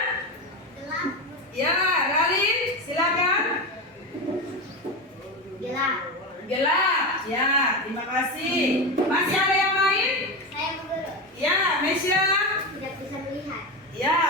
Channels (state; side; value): normal; both; correlation 0.18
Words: Gelap. Ya, Ralin, silakan. Gelap. Gelap. Ya, terima kasih. Masih ada yang lain? Saya guru. Ya, Mesya. Tidak bisa melihat. Ya,